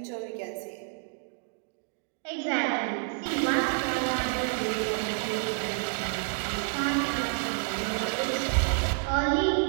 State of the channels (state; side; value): silent; left; 55 dB below the other